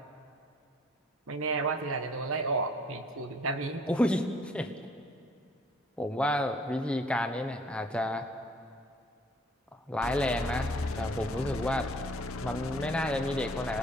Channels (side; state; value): both; normal; correlation 0.57